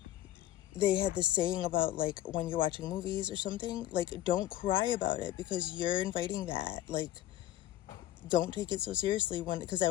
they had this saying about, like, when you're watching movies or something, like, don't cry about it, because you're inviting that. Like, don't take it so seriously. Because I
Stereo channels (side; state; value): right; quieter; 13.9 dB